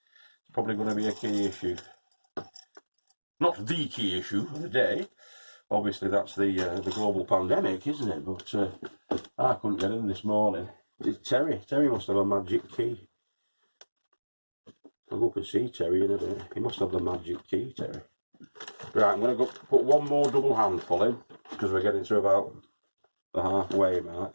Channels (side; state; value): both; inverted; correlation -1.00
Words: probably going to be a key issue. Not the key issue of the day. Obviously that's the global pandemic, isn't it? But I couldn't get in this morning. It's Terry. Terry must have a magic key. I'll go up and see Terry in a bit. He must have the magic key, Terry. Right, I'm going to go put one more double handful in, because we're getting to about the halfway